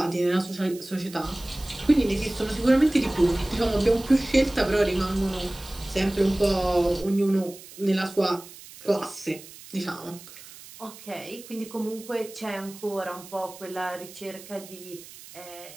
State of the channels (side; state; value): right; noise; hiss, 18 dB below the sound